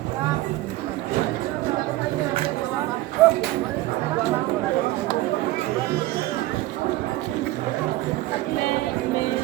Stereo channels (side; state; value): left; quieter; 17.5 dB